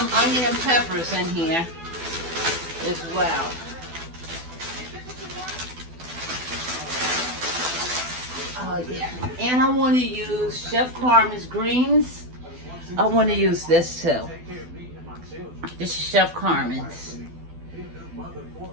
onion and peppers in here as well. Oh yeah. And I want to use Chef Carmen's greens. I want to use this too. This is Chef Carmen's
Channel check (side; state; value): left; late; 12 ms